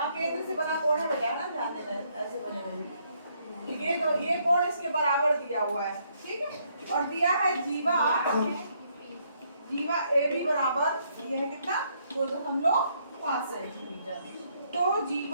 केंद्र से बना कोण है बेटा, है ना, ध्यान देना, ऐसे बने हुए ये, तो ये कोण इसके बराबर दिया हुआ है। ठीक है, और दिया है जीवा, जीवा ए बी बराबर ये है कितना, 2.5 सेंटीमीटर। तो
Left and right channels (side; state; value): both; inverted; correlation -0.71